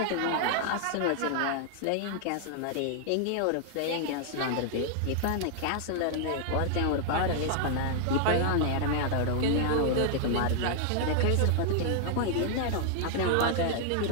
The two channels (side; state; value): both; different; correlation 0.00